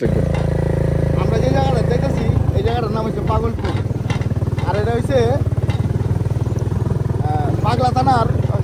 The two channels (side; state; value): both; identical; correlation 1.00